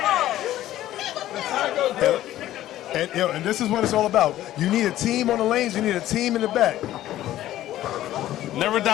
And this is what it's all about. You need a team on the lanes. You need a team in the back. Never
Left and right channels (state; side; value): quieter; right; 13.8 dB